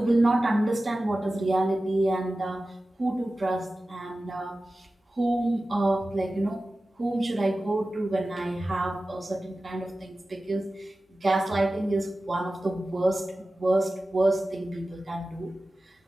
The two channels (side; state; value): both; normal; correlation 0.95